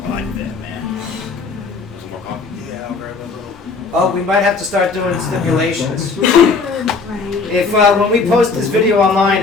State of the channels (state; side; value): quieter; right; 4.5 dB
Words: like that, man. Yeah, I'll grab a little. Oh, we might have to start doing stipulations. If when we post this video